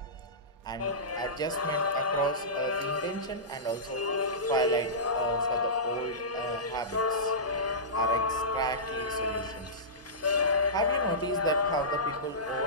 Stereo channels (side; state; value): both; normal; correlation -0.18